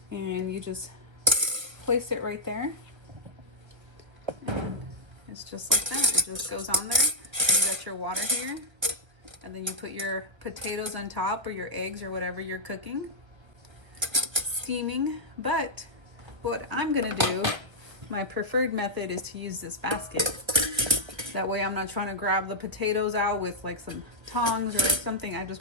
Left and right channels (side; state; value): left; late; 1.6 ms